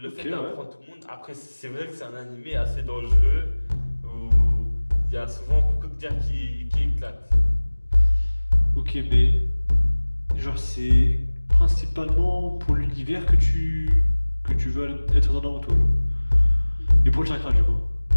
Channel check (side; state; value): both; inverted; correlation -1.00